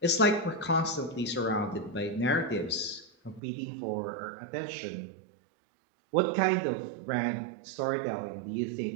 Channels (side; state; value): left; drops out; at 3.4 s